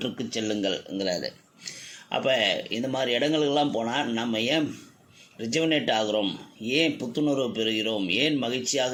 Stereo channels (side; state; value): both; identical; correlation 1.00